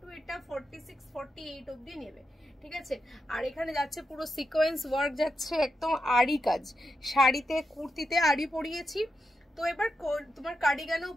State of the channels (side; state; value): both; normal; correlation 0.87